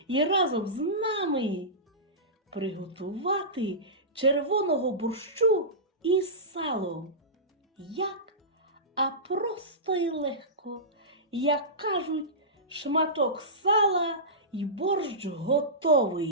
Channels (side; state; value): both; normal; correlation -0.18